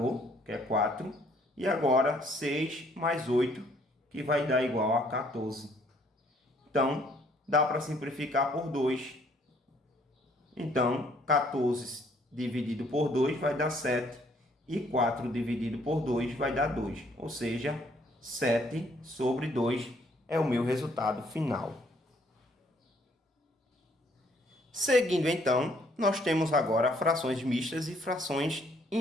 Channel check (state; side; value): normal; both; correlation 0.64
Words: que é 4. E agora, 6 mais 8, que vai dar igual a 14. Então, dá para simplificar por 2. Então, 14 dividido por 2 vai dar 7. E 4 dividido por 2 vai dar 2. Ou seja, 7 sobre 2 é o meu resultado final. Seguindo, então, nós temos agora frações mistas e frações